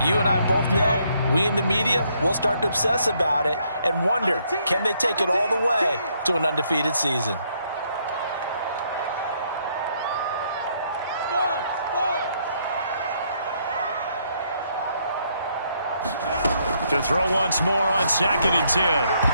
You and I both know, we in the media, we'll start to obsess about it and wonder, can they take it all the way to an undefeated season? To throw once more on 2nd and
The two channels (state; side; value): inverted; both; correlation -0.72